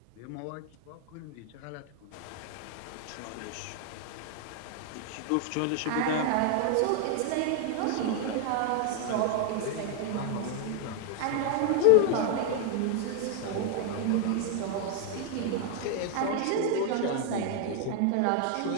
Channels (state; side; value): different; both; correlation 0.00